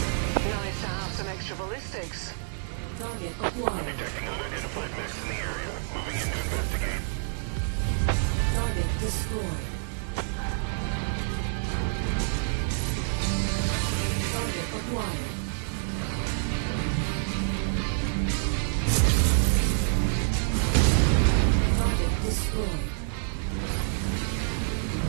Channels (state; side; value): silent; left; digital silence